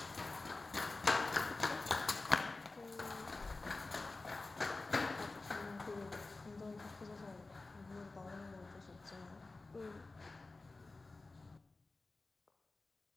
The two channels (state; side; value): quieter; right; 3.4 dB